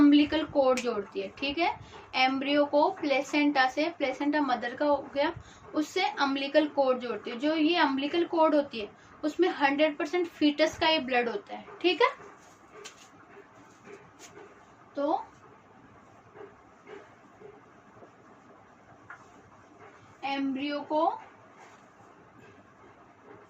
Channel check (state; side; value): identical; both; correlation 1.00